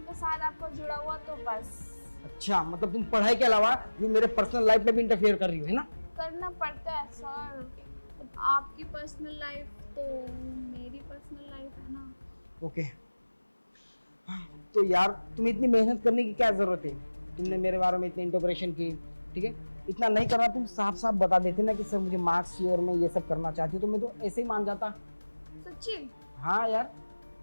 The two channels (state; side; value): inverted; both; correlation -1.00